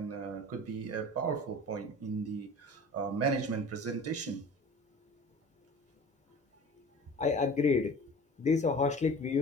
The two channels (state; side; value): normal; both; correlation 0.41